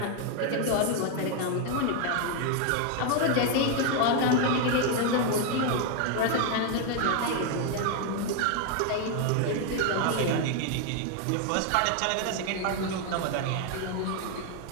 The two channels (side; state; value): both; different; correlation 0.01